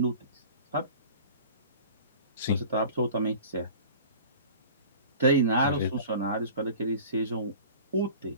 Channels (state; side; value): inverted; both; correlation -0.42